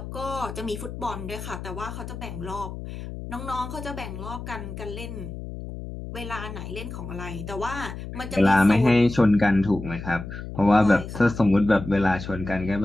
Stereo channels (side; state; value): left; noise; hum, 9 dB below the sound